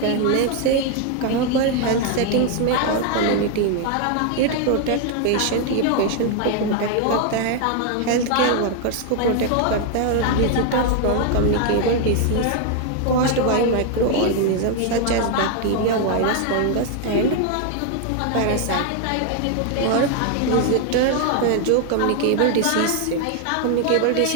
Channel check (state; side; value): different; both; correlation 0.00